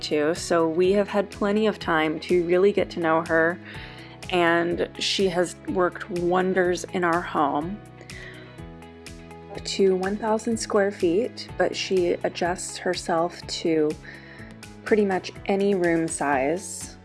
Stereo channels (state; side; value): identical; both; correlation 1.00